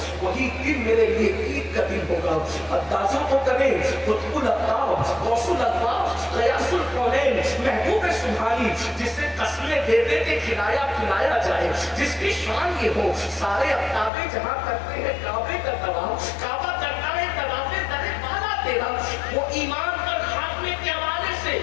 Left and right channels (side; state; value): right; drops out; at 14.1 s